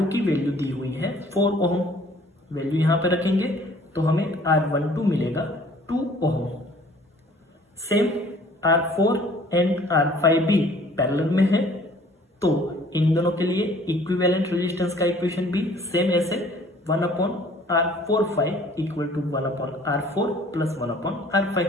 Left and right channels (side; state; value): both; normal; correlation 0.54